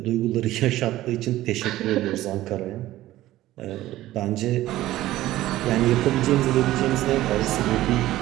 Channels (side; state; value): left; quieter; 15.4 dB